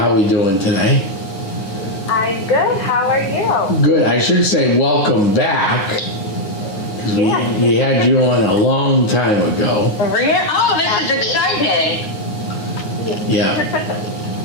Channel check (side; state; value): right; late; 9.5 ms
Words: are we doing today? I'm good. How are you? Good. I should say welcome back. Yeah. We had you on a long time ago. Oh, this is exciting. Yeah.